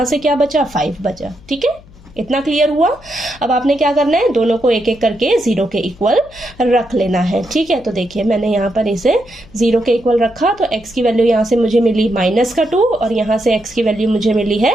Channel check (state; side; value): noise; left; hum, 24 dB below the sound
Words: से क्या बचा, 5 बचा, ठीक है। इतना क्लियर हुआ। अब आपने क्या करना है, दोनों को एक एक करके 0 के इक्वल रख लेना है, ठीक है। तो देखिए मैंने यहाँ पर इसे 0 के इक्वल रखा, तो x की वैल्यू यहाँ से मुझे मिली -2 और यहाँ से x की वैल्यू मुझे मिली